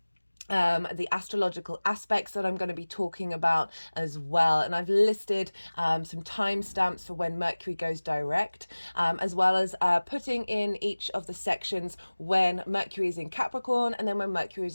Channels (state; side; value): inverted; both; correlation -1.00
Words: the astrological aspects that I'm going to be talking about as well, and I've listed some timestamps for when Mercury goes direct, as well as putting in each of the sections when Mercury is in Capricorn and then when Mercury is